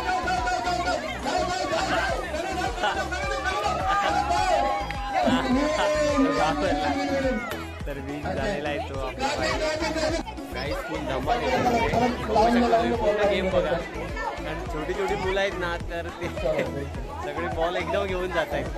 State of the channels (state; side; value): identical; both; correlation 1.00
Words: तर वीज झालेला आहे तो आपला काहीच फुल धमाल पूर्ण गेम बघा. आणि छोटी मुलं आहेत ना, तर ते सगळे बॉल एकदम घेऊन जात आहेत.